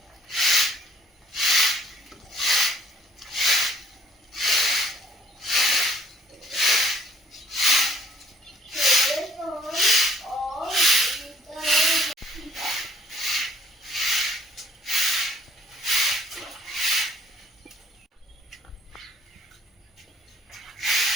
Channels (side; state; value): both; normal; correlation 0.61